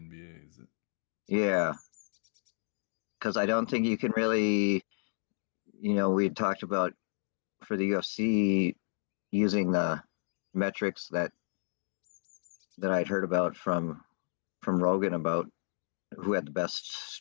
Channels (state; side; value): silent; right; digital silence